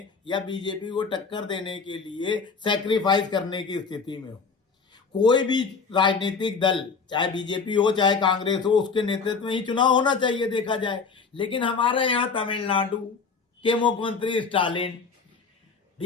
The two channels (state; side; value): quieter; right; 5.1 dB